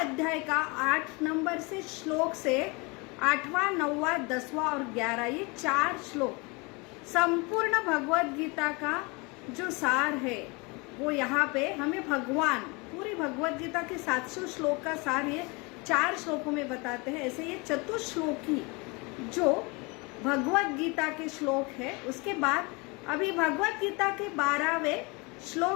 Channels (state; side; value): quieter; right; 28.0 dB